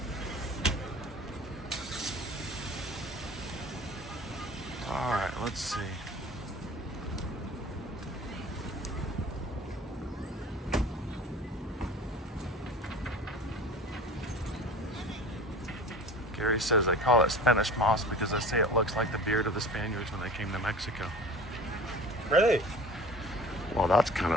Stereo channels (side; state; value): both; normal; correlation 0.40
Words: All right, let's see. Gary says they call it Spanish moss because they say it looks like the beard of the Spaniards when they came to Mexico. Really? Well, that's kind